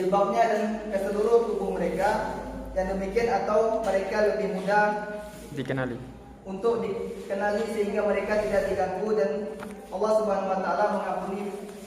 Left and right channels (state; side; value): identical; both; correlation 1.00